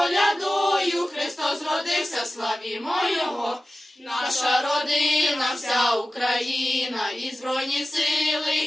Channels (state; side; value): normal; both; correlation 0.95